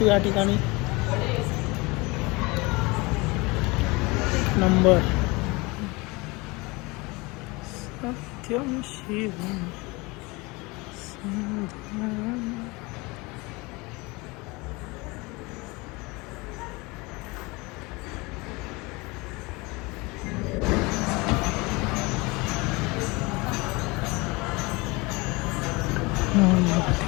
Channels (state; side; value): quieter; right; 24.9 dB